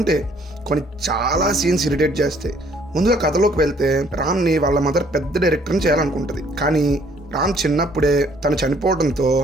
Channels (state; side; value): normal; both; correlation 0.62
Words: కొన్ని చాలా సీన్స్ ఇరిటేట్ చేస్తాయి. ముందుగా కథలోకి వెళ్తే రామ్ని వాళ్ళ మదర్ పెద్ద డైరెక్టర్ని చేయాలనుకుంటుంది. కానీ రామ్ చిన్నప్పుడే తను చనిపోవడంతో